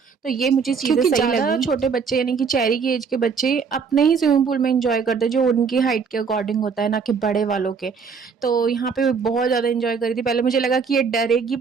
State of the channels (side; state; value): left; quieter; 5.7 dB